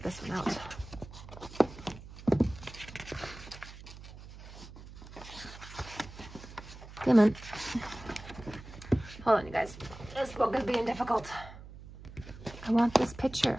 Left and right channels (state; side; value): noise; right; hum, 15 dB below the sound